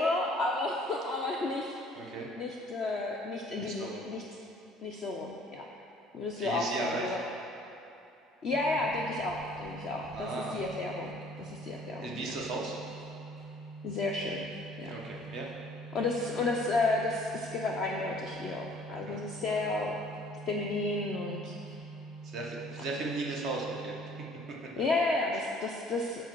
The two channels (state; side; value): normal; both; correlation 0.55